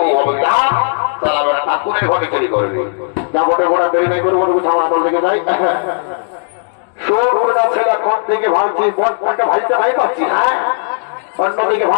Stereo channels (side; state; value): right; silent; digital silence